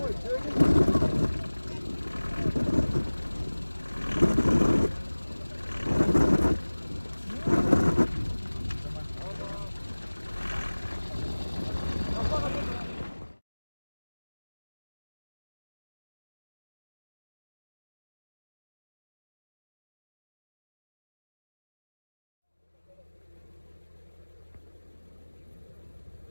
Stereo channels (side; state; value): both; inverted; correlation -1.00